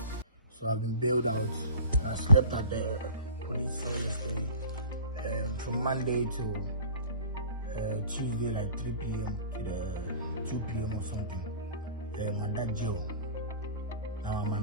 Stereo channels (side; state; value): both; inverted; correlation -0.40